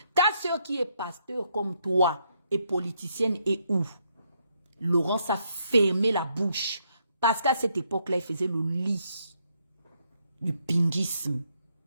Ta soeur qui est pasteur comme toi, et politicienne et où Laurence a fermé la bouche. Parce qu'à cette époque-là, il faisait le lit du pingisme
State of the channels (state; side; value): inverted; both; correlation -0.75